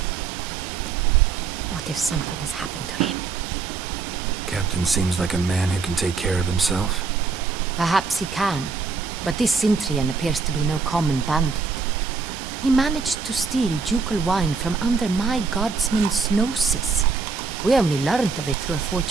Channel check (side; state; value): left; quieter; 4.8 dB